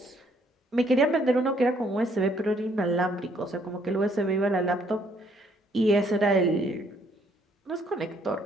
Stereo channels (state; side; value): normal; both; correlation 0.66